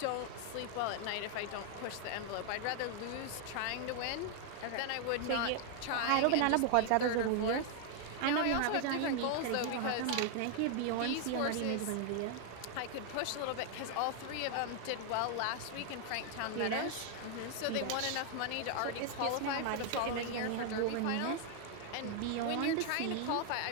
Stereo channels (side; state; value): both; different; correlation 0.00